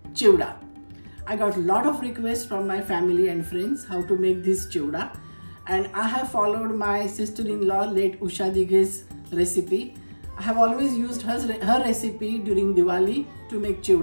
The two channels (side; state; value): both; inverted; correlation -1.00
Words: chivda. I got a lot of requests from my family and friends how to make this chivda, and I have followed my sister-in-law late Usha Dighe's recipe. I have always used her recipe during Diwali to make